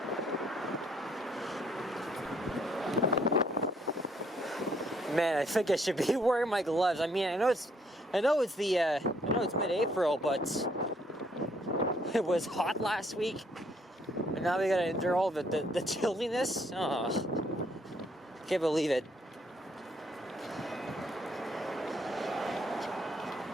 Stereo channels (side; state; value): both; normal; correlation 0.68